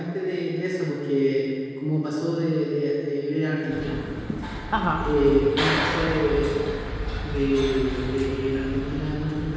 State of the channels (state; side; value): identical; both; correlation 1.00